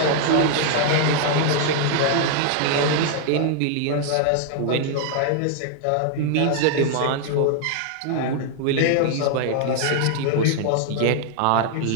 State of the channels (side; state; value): both; different; correlation 0.00